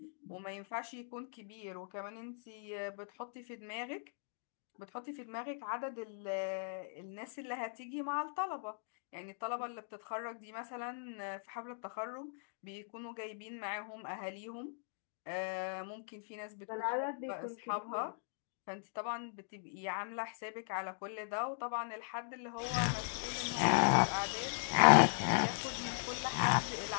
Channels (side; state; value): right; silent; digital silence